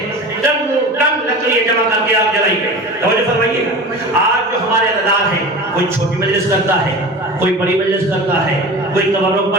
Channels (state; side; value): normal; both; correlation 0.33